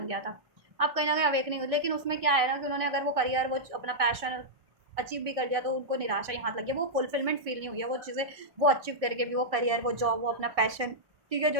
गया था। अब कहीं ना कहीं अवेकनिंग हुई, लेकिन उसमें क्या है ना कि उन्होंने अगर वो करियर वो अपना पैशन अचीव भी कर लिया तो उनको निराशा ही हाथ लग गया, वो फुलफिलमेंट फील नहीं हुई है, वो चीज़ें वो अचीव करके भी, वो करियर, वो जॉब, वो अपना पैशन, ठीक है, जो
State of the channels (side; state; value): left; late; 1.6 ms